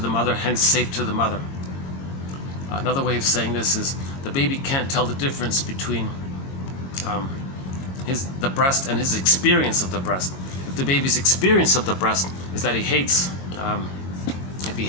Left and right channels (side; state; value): right; late; 22 ms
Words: mother, hence safe to the mother. Another way of saying this is the baby can't tell the difference between the breast and his experience of the breast. If the baby's experience of the breast is that he hates, if he